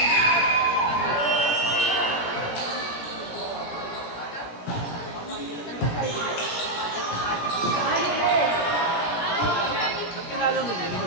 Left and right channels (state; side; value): late; right; 17 ms